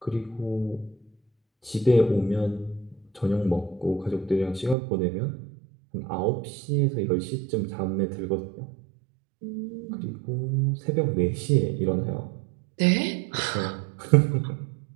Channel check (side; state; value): left; drops out; at 4.8 s